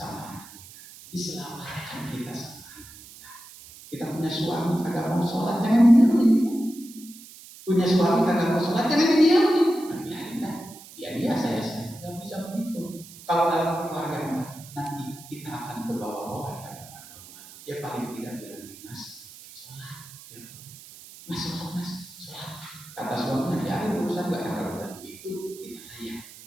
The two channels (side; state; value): right; noise; hiss, 18 dB below the sound